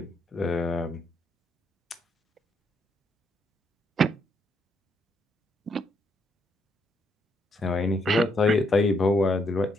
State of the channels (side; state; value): both; normal; correlation 0.74